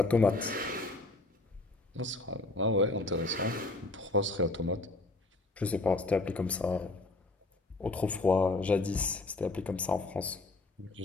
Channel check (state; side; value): quieter; right; 3.0 dB